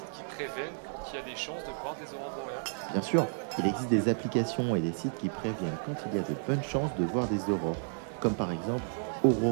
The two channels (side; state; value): left; silent; digital silence